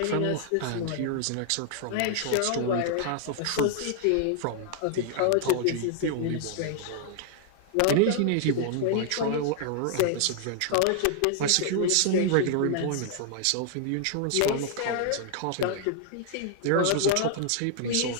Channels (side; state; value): both; different; correlation -0.01